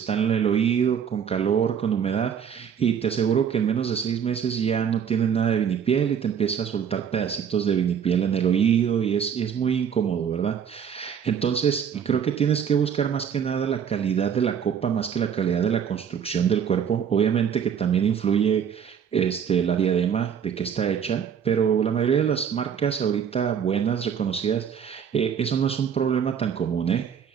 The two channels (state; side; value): quieter; left; 7.9 dB